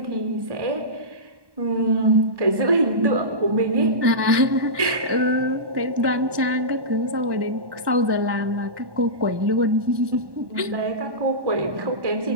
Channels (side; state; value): left; late; 1.1 ms